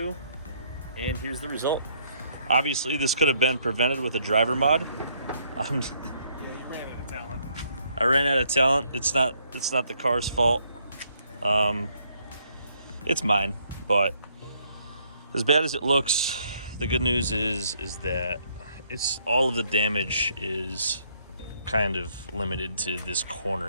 and here's the result. Obviously, this could have been prevented with a driver mod. Yeah, you ran out of talent. I ran out of talent. It's not the car's fault. It's mine, but as bad as it looks, the good news is that it's all of the damage is kind of limited to this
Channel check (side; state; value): both; inverted; correlation -0.69